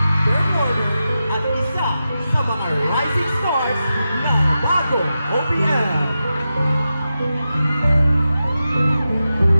performer, at isa sa mga rising stars ng bagong OPM.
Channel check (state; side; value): inverted; both; correlation -0.91